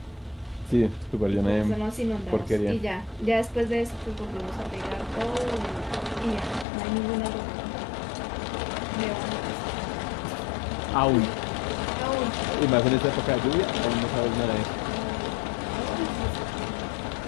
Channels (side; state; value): right; drops out; at 6.7 s